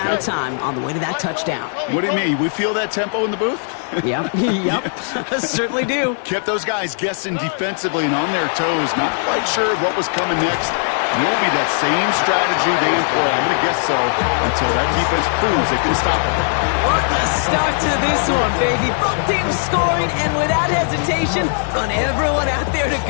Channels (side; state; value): right; silent; digital silence